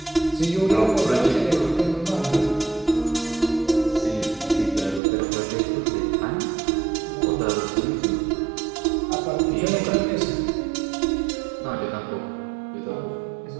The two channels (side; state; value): left; drops out; at 5.0 s